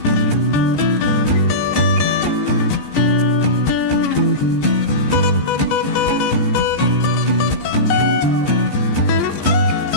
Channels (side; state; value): right; late; 14 ms